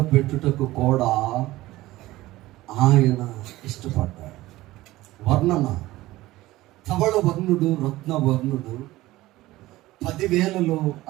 పెట్టుటకు కూడా ఆయన ఇష్టపడ్డాడు. వర్ణన, ధవళ వర్ణుడు, రత్న వర్ణుడు, 10,000లో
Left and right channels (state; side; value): quieter; left; 17.5 dB